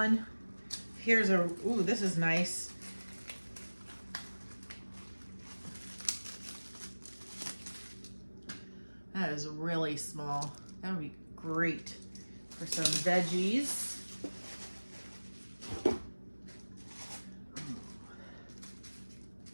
Here's a, ooh, this is nice. That is really small. That would be great for some veggies.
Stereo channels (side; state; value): both; inverted; correlation -1.00